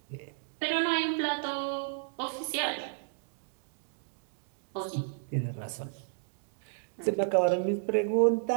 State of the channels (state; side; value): silent; left; digital silence